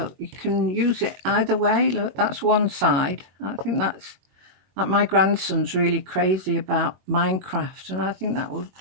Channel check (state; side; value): late; left; 21 ms